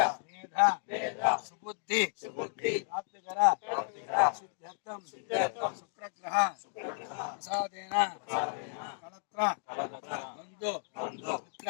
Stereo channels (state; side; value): silent; right; digital silence